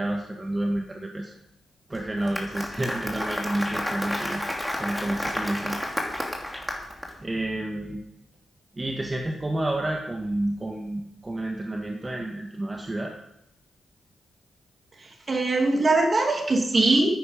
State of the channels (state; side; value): normal; both; correlation 0.93